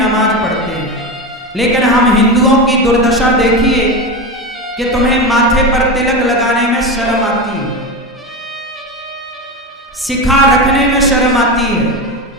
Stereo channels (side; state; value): both; normal; correlation 0.20